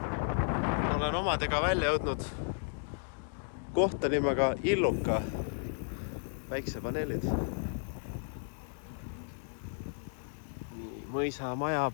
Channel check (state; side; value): silent; right; 55 dB below the other